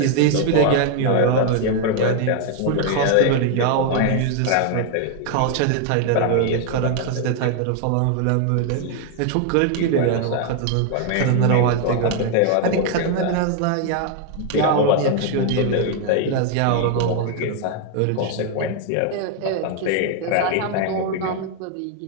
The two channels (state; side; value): different; both; correlation 0.00